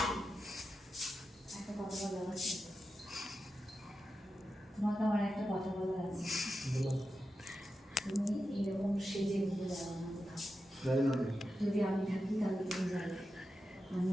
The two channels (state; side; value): normal; both; correlation 0.90